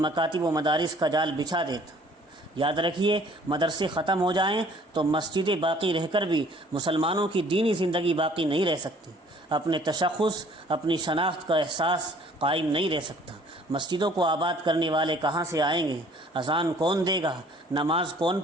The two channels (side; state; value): both; normal; correlation 0.55